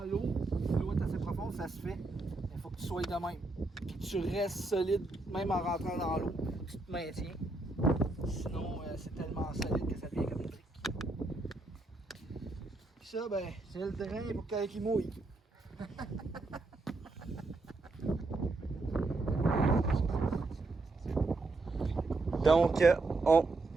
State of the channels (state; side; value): quieter; left; 3.2 dB